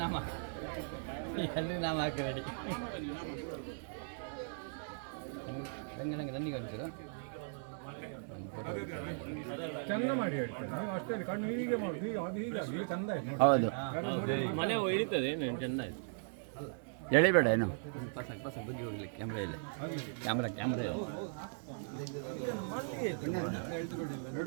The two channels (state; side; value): silent; left; digital silence